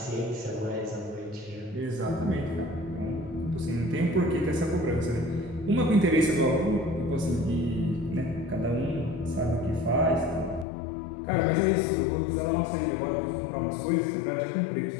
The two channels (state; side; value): drops out; right; at 10.7 s